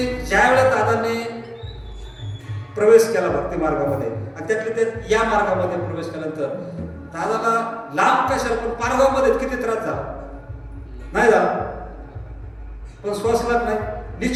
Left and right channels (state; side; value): identical; both; correlation 1.00